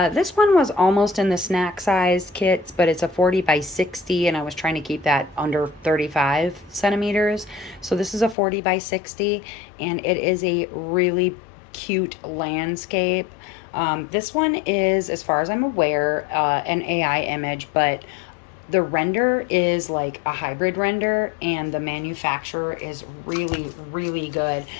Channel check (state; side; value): drops out; right; at 8.3 s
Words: This one was almost in the snack size kits, but it's a 40 by 60, and I was trying to keep that under 35 centimeters. So this is a 40 by 60, and it is a really cute landscape. This one is, as far as I'm aware, an AI image, but the render is like a hybrid render, and the manufacturer is really, really good.